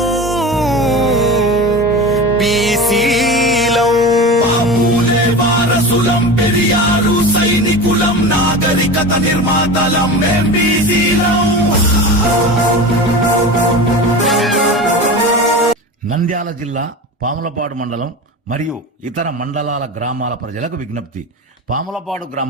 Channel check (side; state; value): both; normal; correlation 0.30